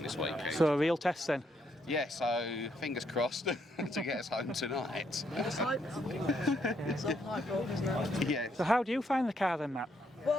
this weekend. So a real test then. Yeah, so fingers crossed to get us home tonight. It's like it's a hype roll, isn't it? Yeah. So how do you find the car then, Matt?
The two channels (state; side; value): normal; both; correlation 0.74